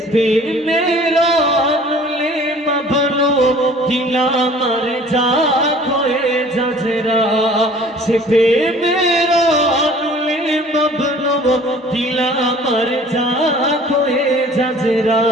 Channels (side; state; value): both; normal; correlation 0.50